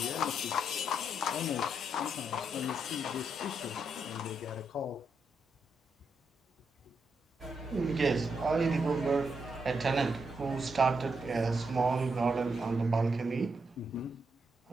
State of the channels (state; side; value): normal; both; correlation 0.81